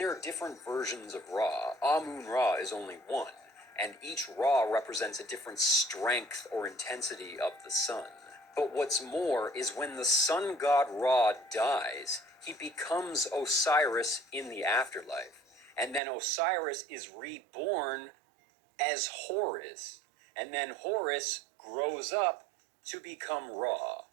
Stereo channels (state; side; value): drops out; left; at 16.0 s